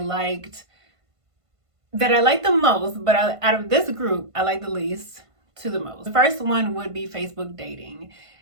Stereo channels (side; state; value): left; late; 1.5 ms